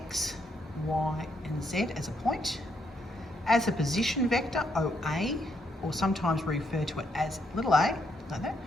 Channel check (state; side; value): normal; both; correlation 0.76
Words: Y and Z as a point. As a position vector, OA, or sometimes we refer to it as little a, like that,